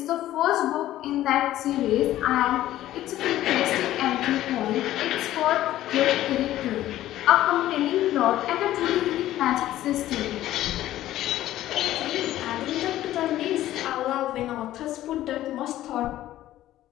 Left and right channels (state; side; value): quieter; right; 14.0 dB